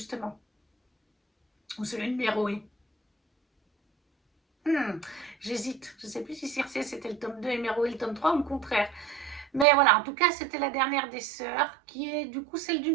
Ou celui de Méroé. J'hésite. Je ne sais plus si Circé, c'était le tome 2 et Méroé le tome 3 ou le contraire. Mais voilà, en tout cas, c'était la dernière des sœurs, qui est du coup celle du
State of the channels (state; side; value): drops out; left; at 9.7 s